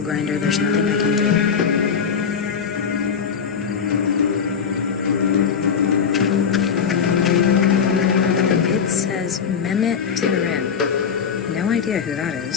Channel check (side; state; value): right; quieter; 6.6 dB